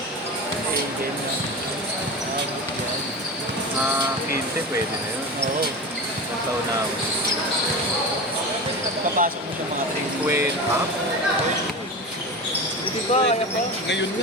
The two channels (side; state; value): both; normal; correlation 0.27